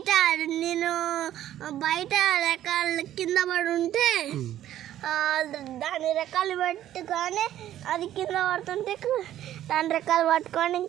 నేను బయట రెక్కలు కింద పడి ఉంటే దాని రెక్కలు పెట్టుకొని అది కింద పడుతుంటే దాని రెక్కలు పట్టుకొని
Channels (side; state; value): left; quieter; 12.3 dB